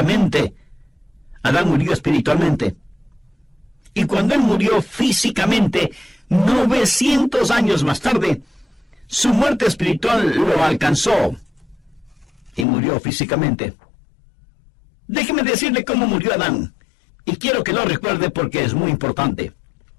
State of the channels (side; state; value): right; drops out; at 12.7 s